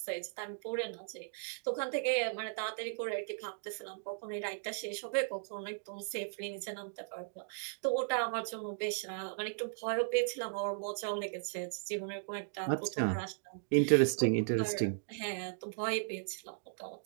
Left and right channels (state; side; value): silent; left; digital silence